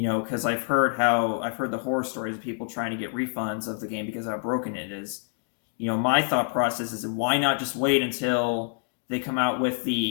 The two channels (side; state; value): right; silent; 58 dB below the other